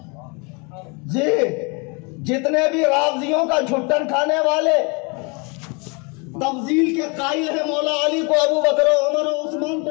جی جتنے بھی رافضیوں کا جھٹن کھانے والے تفضیل کے قائل ہیں، مولا علی کو ابو بکر و عمر و عثمان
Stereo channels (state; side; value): quieter; right; 31.5 dB